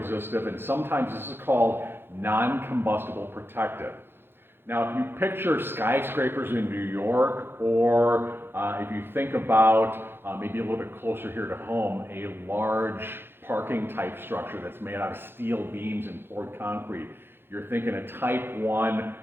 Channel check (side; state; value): left; late; 0.10 ms